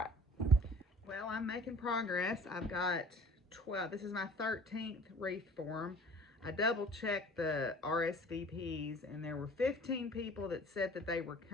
Well, I'm making progress. I've got 12. This is my 13th wreath form. I double checked the RSVPs, and there were 15 people that said that they were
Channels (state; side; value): normal; both; correlation 0.48